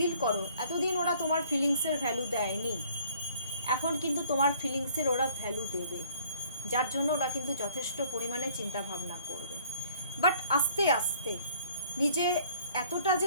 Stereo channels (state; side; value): inverted; both; correlation -0.56